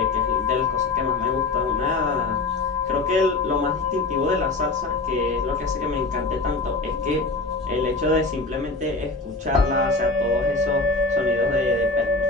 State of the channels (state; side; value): quieter; right; 3.5 dB